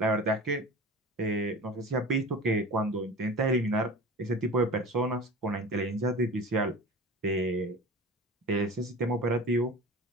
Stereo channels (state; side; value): normal; both; correlation 0.36